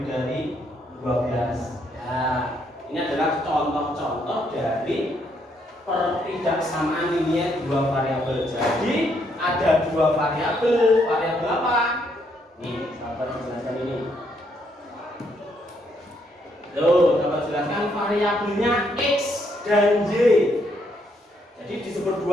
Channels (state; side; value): normal; both; correlation 0.73